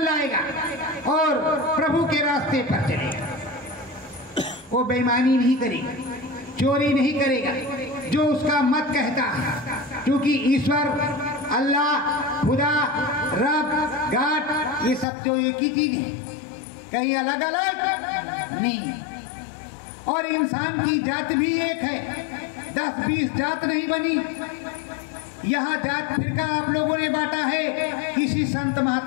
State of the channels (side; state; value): right; drops out; at 15.1 s